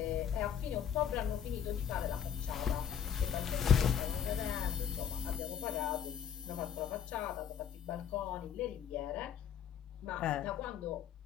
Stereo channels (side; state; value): right; quieter; 8.3 dB